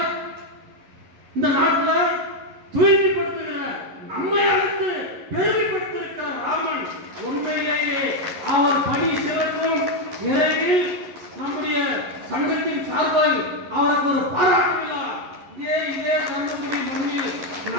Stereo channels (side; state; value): left; late; 11 ms